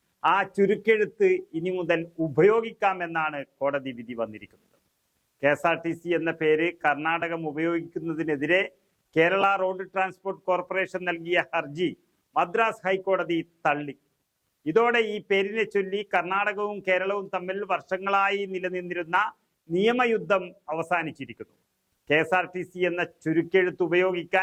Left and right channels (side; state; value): both; identical; correlation 1.00